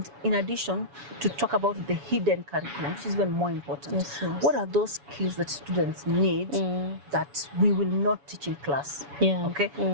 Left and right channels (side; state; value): left; late; 7.1 ms